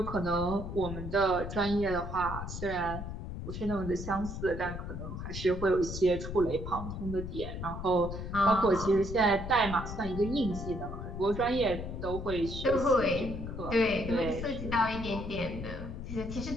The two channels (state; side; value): noise; left; rumble, 7 dB below the sound